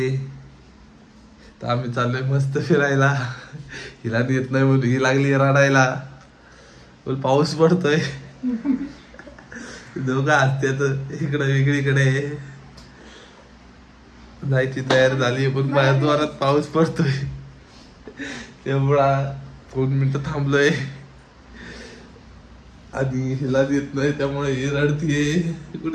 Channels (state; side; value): identical; both; correlation 1.00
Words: तर आम्ही चाललोय मस्त फिरायला. हिला येत नाही म्हणून ही लागली रडायला. बोल पाऊस पडतोय. दोघं हसतात इकडे वेगळीकडे. जायची तयार झाली पण बाहेर जोरात पाऊस पडतोय. एवढा 2 मिनिटं थांबलोय आणि हिला येत नाही त्यामुळे ही रडतीये.